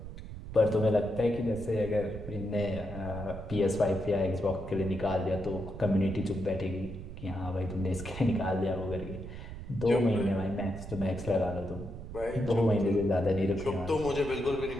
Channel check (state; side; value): noise; right; rumble, 10 dB below the sound